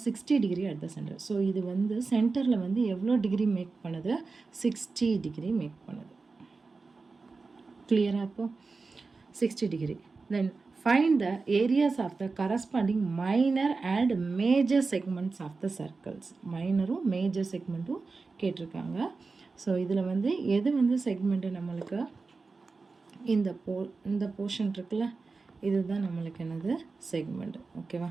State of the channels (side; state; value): left; quieter; 4.1 dB